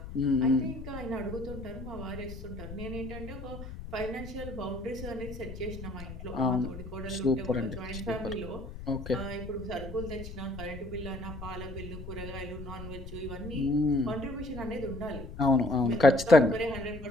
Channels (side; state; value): left; noise; rumble, 10 dB below the sound